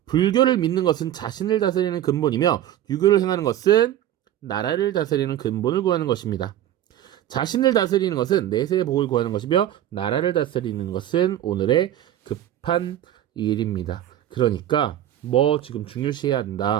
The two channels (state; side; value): quieter; left; 12.1 dB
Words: 불교를 믿는 것은 자신을 다스리는 근본이며 유교를 행하는 것은 나라를 다스리는 근본을 구하는 것입니다. 자신을 다스리는 것은 내세의 복을 구하는 것이며 나라를 다스리는 것은 오늘의 급한 일입니다. 그러니까 지금 중요시해야